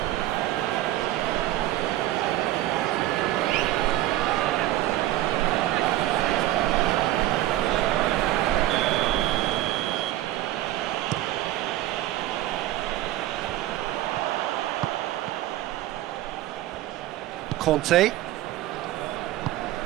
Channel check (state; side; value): quieter; left; 14.9 dB